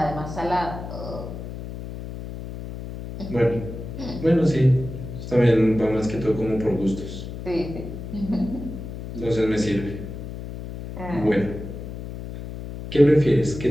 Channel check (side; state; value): left; noise; hum, 9 dB below the sound